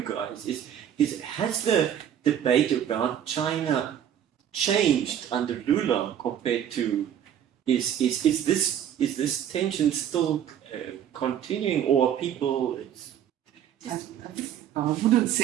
guys is has the debate about China changed under Lula compared to is this tension still continuing, or are people? I wouldn't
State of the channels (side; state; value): left; quieter; 9.8 dB